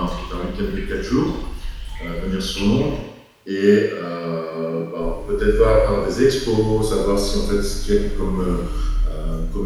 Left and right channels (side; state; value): both; identical; correlation 1.00